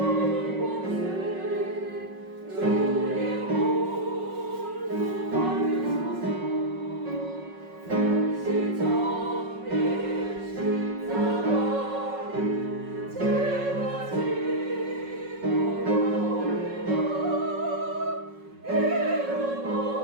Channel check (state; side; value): late; left; 5.4 ms